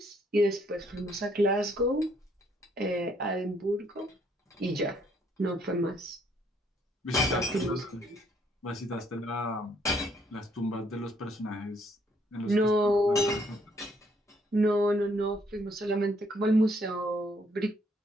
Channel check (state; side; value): normal; both; correlation 0.68